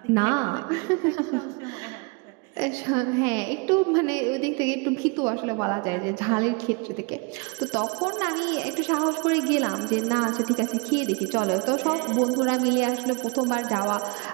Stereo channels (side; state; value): left; quieter; 31.1 dB